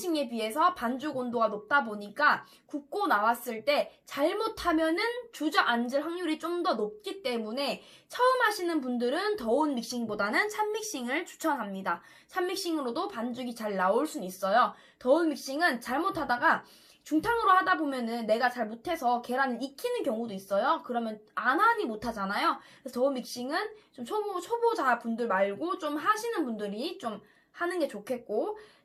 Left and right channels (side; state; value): both; identical; correlation 1.00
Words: 비해서 반죽 온도가 높다 보니까 굽고 나왔을 때 잘못하면은 주저앉을 확률이 좀 더 높기 때문에 처음 하시는 분들은 더운 믹싱보다는 찬믹싱을 추천합니다. 찬믹싱으로도 반죽이 잘 나올 수는 있어요. 더운 믹싱은 잘못하다가 중탕으로 하다 보면은 내가 잘 못해서 계란을 익히는 경우도 있어요. 그러면 안 하니 못하잖아요. 그래서 더운 믹싱은 좀 초보자 분들 말고 좀 하시는 분들이 좀 하는 게 좋겠고,